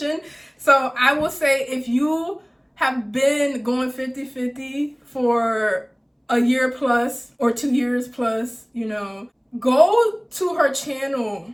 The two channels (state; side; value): identical; both; correlation 1.00